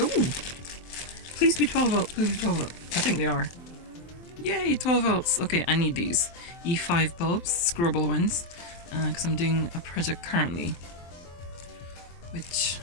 Please be 12 volt, please be 12 volt. I think they are. Yay, 12 volts. Okay, I need these E5 bulbs, screwable ones, because I'm doing a project currently, which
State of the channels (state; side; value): late; right; 23 ms